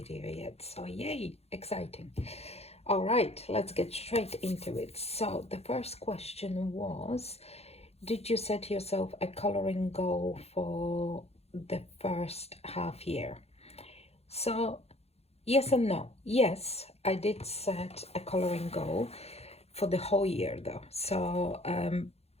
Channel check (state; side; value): late; right; 0.30 ms